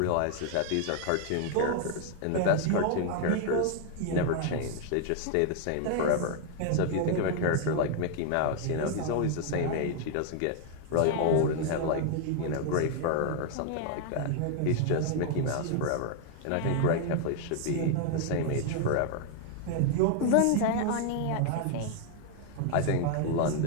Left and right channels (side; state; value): both; different; correlation 0.00